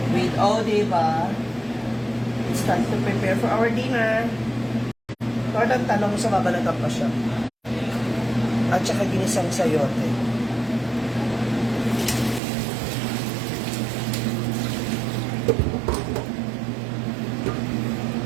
with diba? It's time to prepare for our dinner. Tortang talong sa babalatan pa siya. At saka ginisang sayote.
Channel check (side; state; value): left; drops out; at 12.4 s